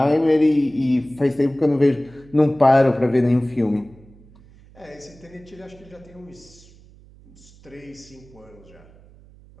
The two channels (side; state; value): right; noise; hum, 25 dB below the sound